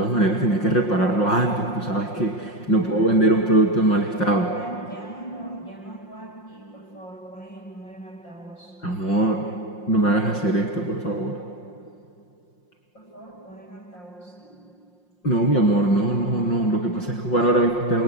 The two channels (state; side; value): late; right; 5.6 ms